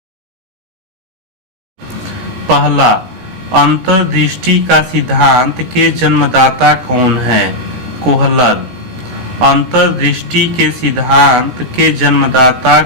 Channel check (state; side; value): late; left; 16 ms